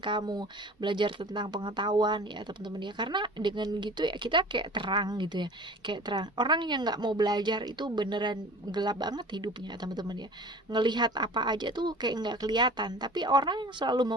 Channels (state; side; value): normal; both; correlation 0.42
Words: kamu, belajar tentang pengetahuan ya teman-teman ya. Karena dengan gitu ya kita kayak terang gitu ya, kayak terang. Orang yang nggak mau belajar itu beneran gelap banget hidupnya teman-teman ya, ngelihat apa aja tuh kayak nggak kelihatan. Tapi orang yang selalu